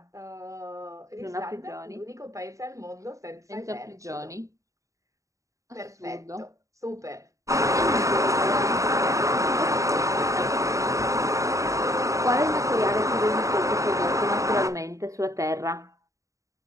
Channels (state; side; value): late; left; 0.16 ms